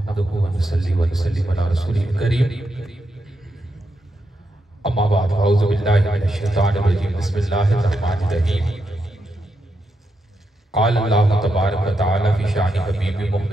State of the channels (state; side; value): normal; both; correlation 0.84